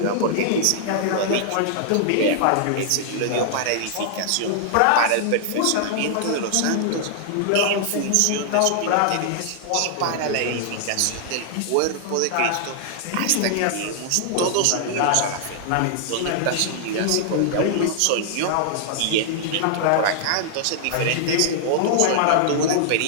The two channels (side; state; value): both; different; correlation -0.01